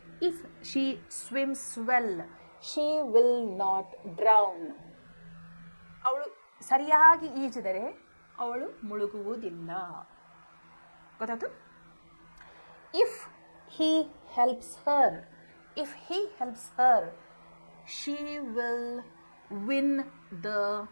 if she swims well she will not drown. ಅವಳು ಸರಿಯಾಗಿ ಈಜಿದರೆ ಅವಳು ಮುಳುಗುವುದಿಲ್ಲ. ಗೊತ್ತಾಯ್ತು? If he helps her, if he helps her she will win the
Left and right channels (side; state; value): both; inverted; correlation -1.00